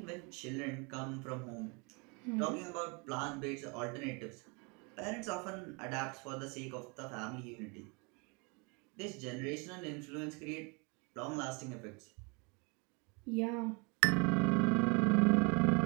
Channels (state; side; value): quieter; left; 31.1 dB